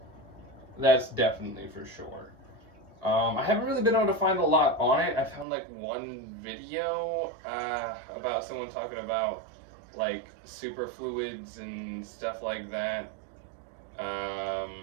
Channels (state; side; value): drops out; left; at 5.5 s